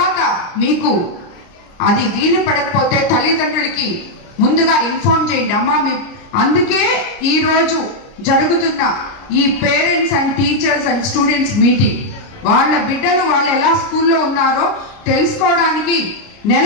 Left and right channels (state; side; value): late; right; 29 ms